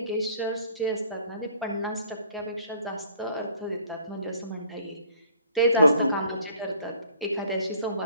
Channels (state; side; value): inverted; both; correlation -0.56